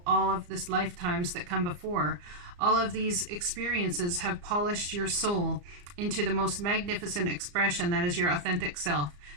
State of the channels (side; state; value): left; late; 34 ms